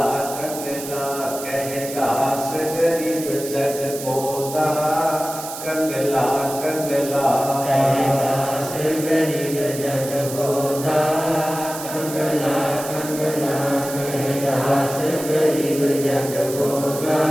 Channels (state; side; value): noise; right; hiss, 10 dB below the sound